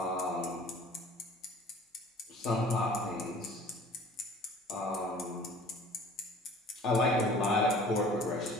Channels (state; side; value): normal; both; correlation 0.48